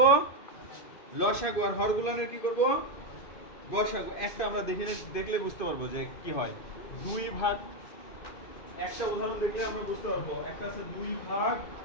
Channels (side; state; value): right; late; 2.5 ms